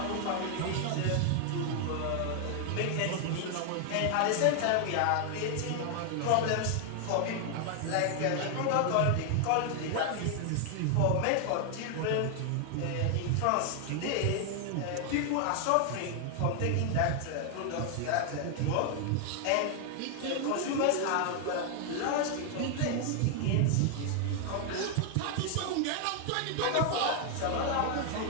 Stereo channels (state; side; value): different; both; correlation 0.00